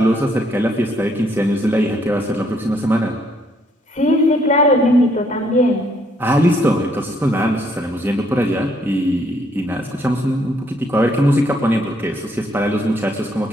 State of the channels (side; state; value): both; normal; correlation 0.69